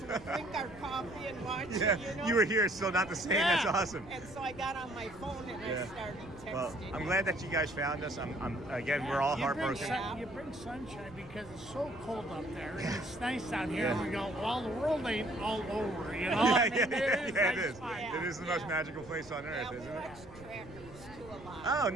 we drink our coffee and watch Yeah, it, you know. you were here, still not the same. Yeah. That's awesome. And so I got on my phone and Yeah. I started texting. Well, I'm him. glad that you guys found us. Again, we're all You bring heartbroken. you bring sunshine because it's so cold up there. And it's nice down here. And we go, well, the world ain't all over, you know? I mean, it nice is. fun. It is the most magical place on earth, Yeah, we isn't it? watch trackers too a lot. Oh,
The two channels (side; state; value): right; noise; rumble, 19 dB below the sound